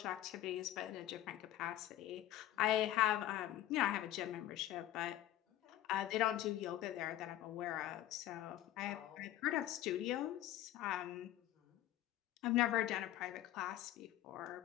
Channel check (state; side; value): quieter; right; 13.6 dB